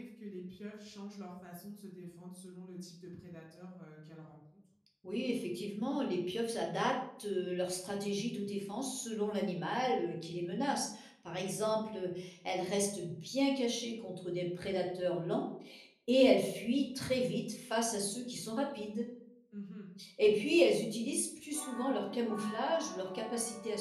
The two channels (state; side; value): identical; both; correlation 1.00